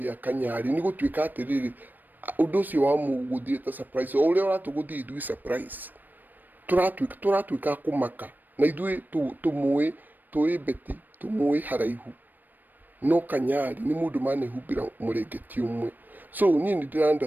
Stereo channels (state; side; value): late; left; 0.089 ms